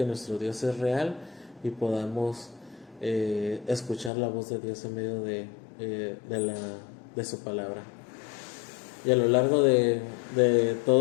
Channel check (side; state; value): right; drops out; at 4.1 s